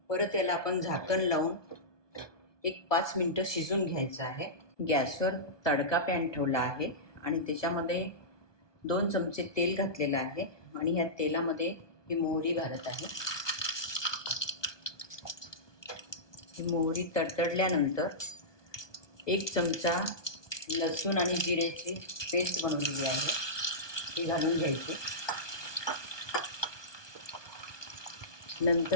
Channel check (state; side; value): late; right; 1.2 ms